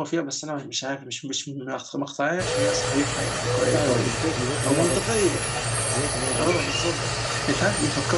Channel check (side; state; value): both; identical; correlation 1.00